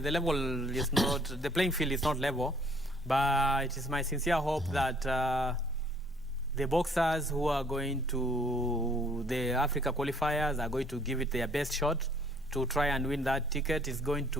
is not, the playing field is not level, but it is my sincere hope that the boxers who are going to the Africa qualifiers are going to give it their best shot to try and win that ticket. It's going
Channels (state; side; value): normal; both; correlation 0.60